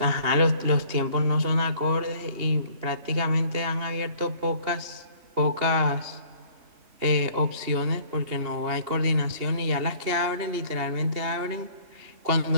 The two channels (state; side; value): late; left; 2.8 ms